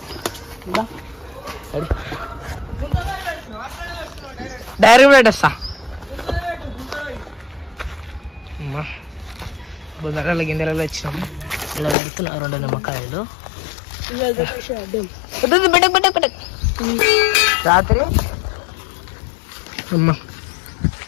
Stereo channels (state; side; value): drops out; right; at 12.0 s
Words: డైరెక్ట్ పెట్టేస్తా. బుధవారాల గింజలలో వచ్చినాము. ఇలా పెడుతున్నా 2 నిమ్మకాయలు.